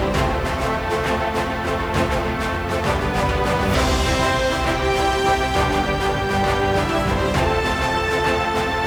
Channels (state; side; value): noise; left; hiss, 28 dB below the sound